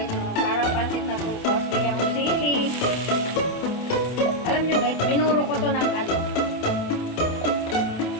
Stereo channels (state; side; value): late; right; 27 ms